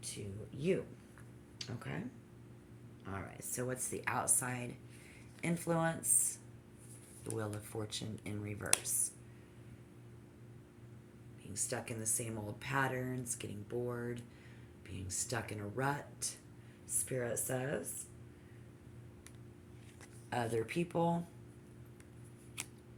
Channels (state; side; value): identical; both; correlation 1.00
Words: to you. Okay? All right. So what's the outside influence? The Wheel of Fortune in reverse. Being stuck in the same old patterns, getting bored, being stuck in a rut, Spirit says. Other people,